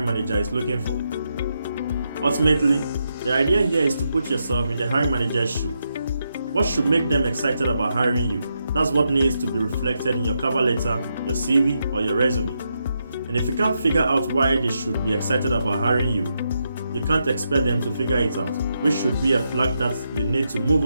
manager is looking for. Ultimately, the idea here is to put yourself in the hiring manager's shoe. What should make them excited about hiring you? That's what needs to be reflected in your cover letter, your CV, or your resume. And if you can't figure out why they should be excited about hiring you, you can't expect them to figure it out, which should be a flag that you need to move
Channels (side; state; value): both; inverted; correlation -0.83